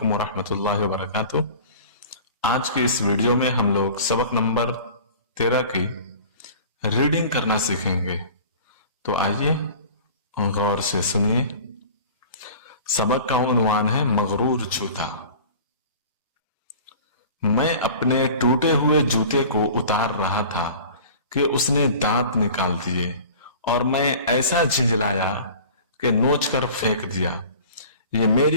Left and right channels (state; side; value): inverted; both; correlation -0.42